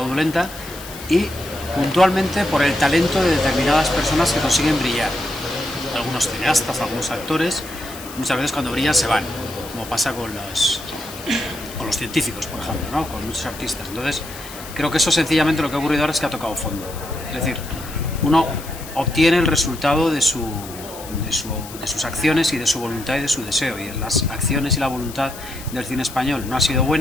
y puntualmente por el talento de determinadas personas que consiguen brillar. Algunos cineastas, algunos actores, muchas veces cuando brillan se van, como pasa con los científicos, por ejemplo, ¿no? Con muchos artistas. Entonces, creo que eso sencillamente lo que ha ocurrido ahora es que ha tocado fondo. Es decir, uno obtiene el resultado de sus acciones y de su voluntad y de su deseo, y las acciones y la voluntad del cine español no ha sido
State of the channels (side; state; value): left; noise; hiss, 14 dB below the sound